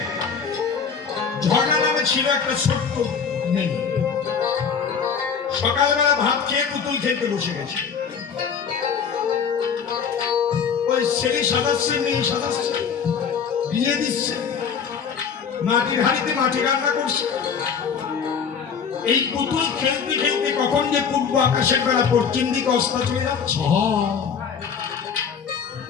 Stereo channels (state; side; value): quieter; right; 6.6 dB